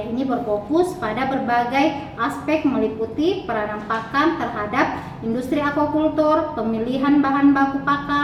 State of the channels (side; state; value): both; identical; correlation 1.00